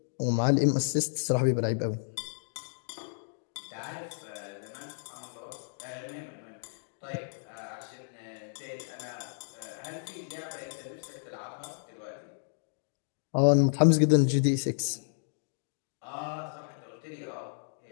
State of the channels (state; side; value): silent; right; digital silence